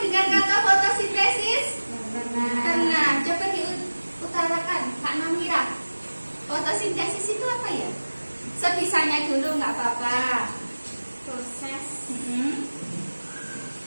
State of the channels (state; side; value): inverted; both; correlation -1.00